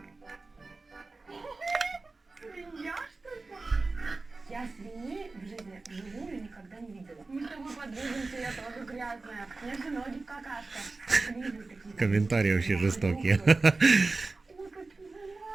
Я свиньи в жизни вживую никогда не видела. Мы с тобой подвижимся, я тоже грязная. У меня же ноги в какашках. Комментарии вообще жестокие. Ой, какие вы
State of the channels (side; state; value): left; quieter; 3.6 dB